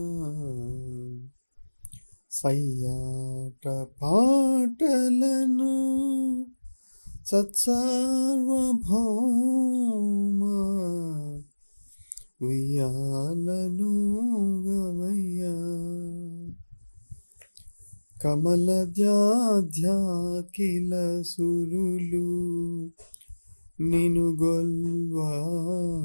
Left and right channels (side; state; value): both; inverted; correlation -1.00